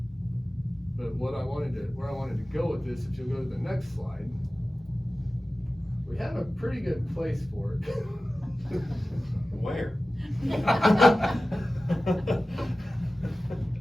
But where I wanted to go with this, if you'll go to the next slide, we have a pretty good place for it. Where?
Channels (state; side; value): normal; both; correlation 0.96